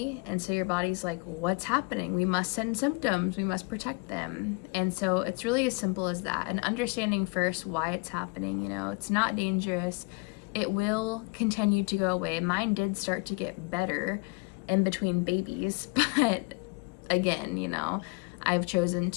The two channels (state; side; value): quieter; right; 30.4 dB